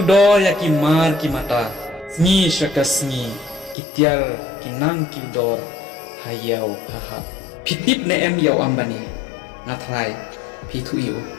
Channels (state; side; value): drops out; right; at 3.8 s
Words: do ya ki mar ki mata ni shakasni kitiar kinang kiudor hayau haha pitip ne em yau ambani ngathrai pithu yu